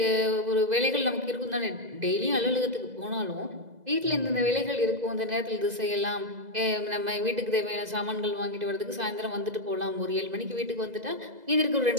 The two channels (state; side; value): late; left; 2.0 ms